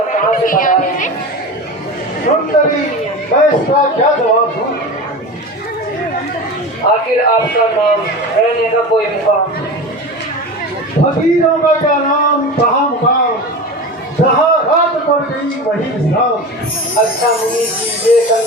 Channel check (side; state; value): both; normal; correlation 0.29